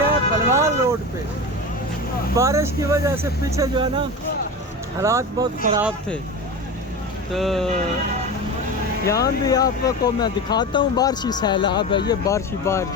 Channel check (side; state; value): both; normal; correlation 0.26